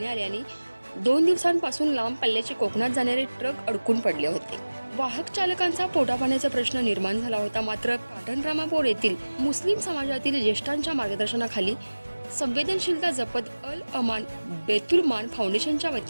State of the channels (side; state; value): both; inverted; correlation -1.00